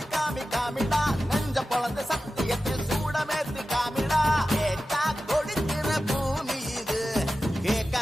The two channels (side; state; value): both; normal; correlation 0.94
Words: காமி காமிடா நெஞ்ச பொழந்த சத்தியத்தை சூடமேத்தி காமிடா கேட்டா கொடுக்கிற பூமி இது